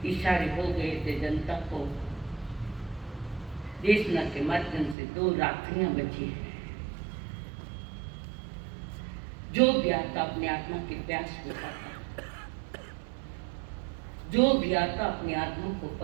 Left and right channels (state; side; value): drops out; left; at 5.0 s